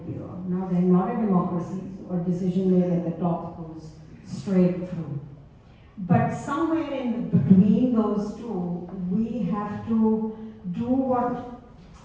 Now they're not a democracy, or decision made at the top goes straight through. But somewhere in between those two, we have to do what.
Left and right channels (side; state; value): both; identical; correlation 1.00